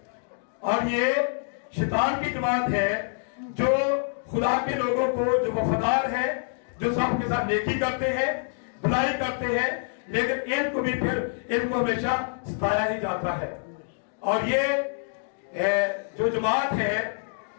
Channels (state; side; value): silent; right; digital silence